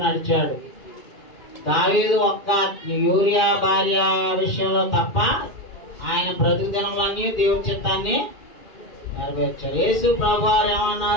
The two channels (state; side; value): late; right; 2.4 ms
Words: నడిచాడు. దావీదు ఒక్క యూరియా భార్య విషయంలో తప్ప ఆయన బ్రతుకు దినములన్నీ దేవుని చిత్తాన్ని నెరవేర్చారు. యేసు ప్రభు వారు